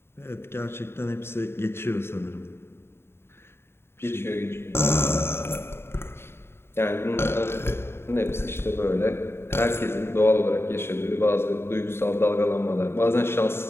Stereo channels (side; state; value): right; late; 0.12 ms